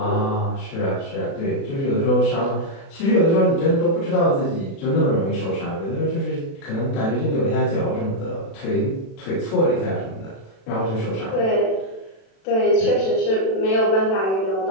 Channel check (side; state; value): right; late; 36 ms